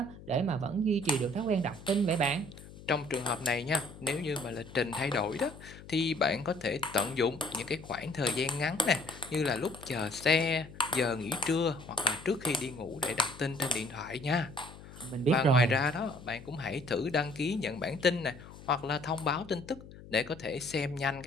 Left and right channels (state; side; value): noise; left; hum, 17 dB below the sound